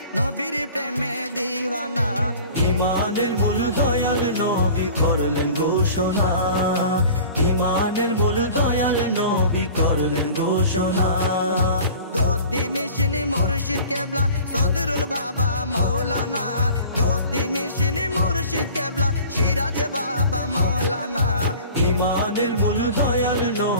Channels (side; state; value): both; inverted; correlation -0.43